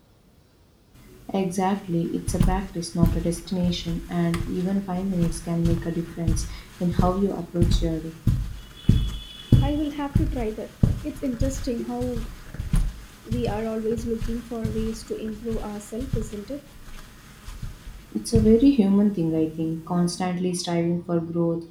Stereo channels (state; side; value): identical; both; correlation 1.00